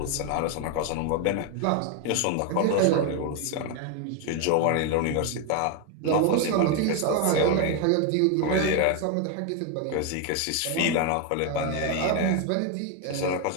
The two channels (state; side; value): different; both; correlation 0.01